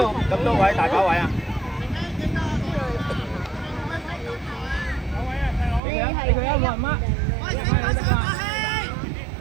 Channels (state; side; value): drops out; left; at 5.8 s